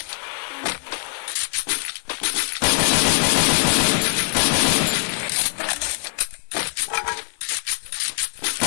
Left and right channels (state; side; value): silent; right; 61 dB below the other